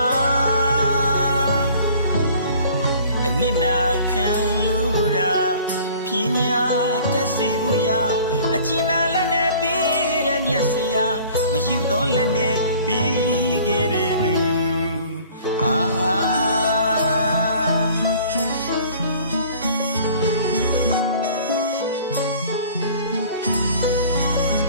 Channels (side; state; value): both; inverted; correlation -0.50